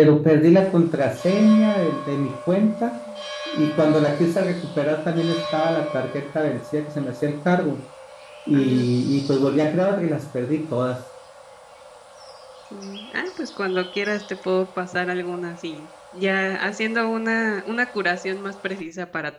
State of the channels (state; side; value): identical; both; correlation 1.00